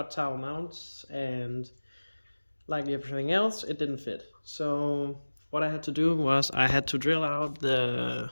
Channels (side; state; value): both; inverted; correlation -1.00